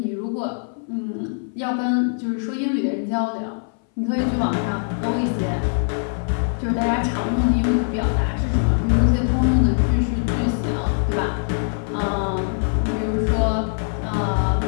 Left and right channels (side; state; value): right; silent; 60 dB below the other